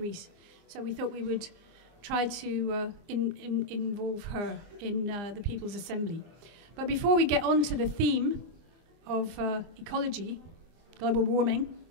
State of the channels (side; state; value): left; late; 24 ms